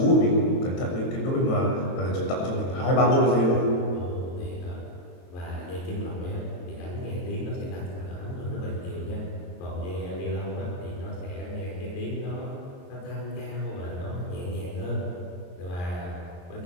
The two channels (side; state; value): right; late; 22 ms